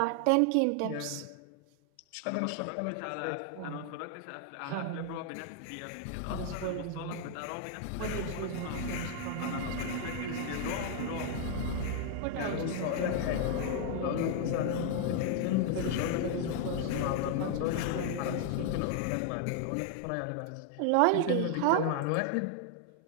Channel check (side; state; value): both; different; correlation 0.00